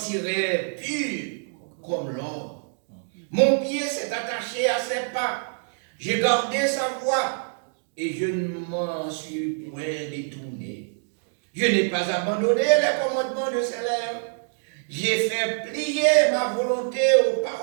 pur comme l'or. Mon pied s'est attaché à ses pas. J'ai gardé sa voie et je ne m'en suis point détourné. Je n'ai pas abandonné les commandements de ses lèvres. J'ai fait plier ma volonté aux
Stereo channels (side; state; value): left; silent; digital silence